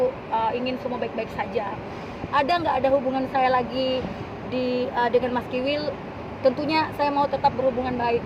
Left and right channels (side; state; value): both; identical; correlation 1.00